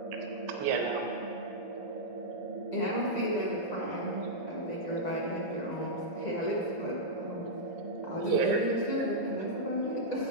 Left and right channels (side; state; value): right; late; 2.0 ms